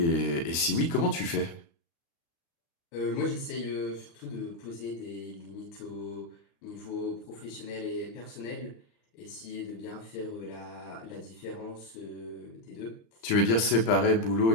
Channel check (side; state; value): right; late; 35 ms